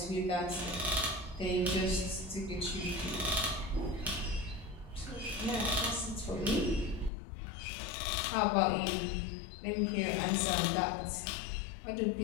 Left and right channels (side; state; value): right; drops out; at 7.1 s